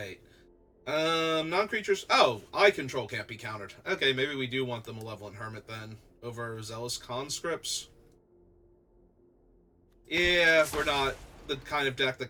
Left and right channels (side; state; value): both; identical; correlation 1.00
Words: Non-creatures... Oh, Eye Control can't be countered. Okay, maybe we do want the Malevolent Hermit then, over Zealous Conscripts. Yeah, we're not the kind of deck that